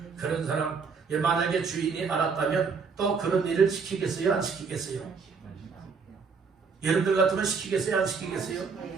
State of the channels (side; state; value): left; quieter; 5.3 dB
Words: 그런 사람 만약에 주인이 알았다면 또 그런 일을 시키겠어요? 안 시키겠어요? 여러분들 같으면 시키겠어요? 안 시키겠어요?